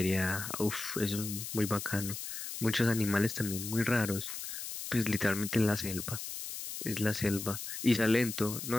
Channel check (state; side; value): noise; left; hiss, 7 dB below the sound